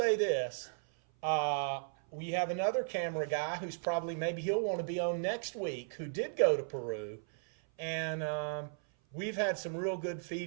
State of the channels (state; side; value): silent; left; 54 dB below the other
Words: this. We have another camera guy who's probably, maybe he'll want to be on next week, who did go to Peru. And we've had some real good